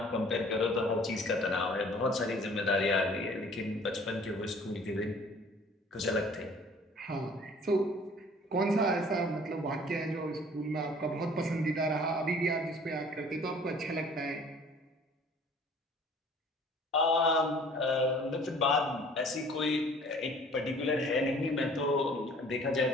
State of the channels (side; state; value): both; normal; correlation 0.52